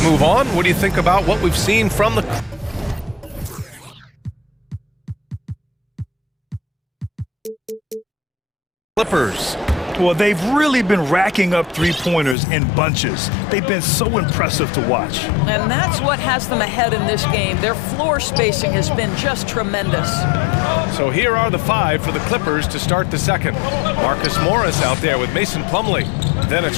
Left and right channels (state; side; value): drops out; right; at 12.4 s